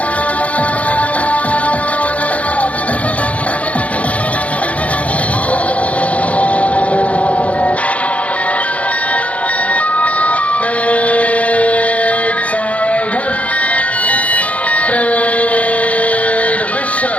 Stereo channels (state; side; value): late; right; 0.066 ms